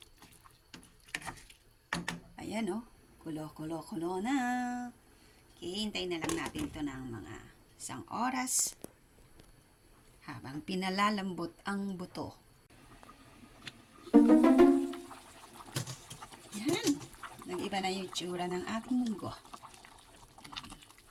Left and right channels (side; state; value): both; identical; correlation 1.00